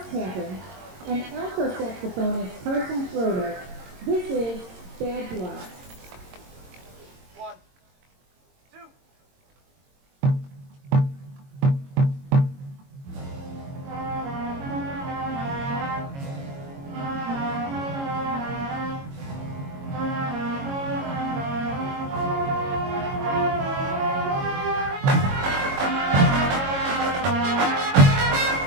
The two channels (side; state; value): left; late; 22 ms